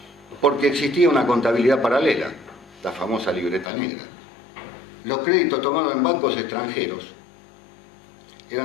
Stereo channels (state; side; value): drops out; right; at 3.7 s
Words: Porque existía una contabilidad paralela, la famosa libreta negra. Los créditos tomados en bancos extranjeros